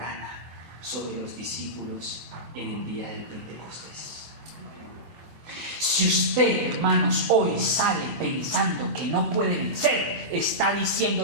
sobre los discípulos en el día del Pentecostés. Si usted, hermanos, hoy sale pensando que no puede vencer, está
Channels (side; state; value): left; late; 24 ms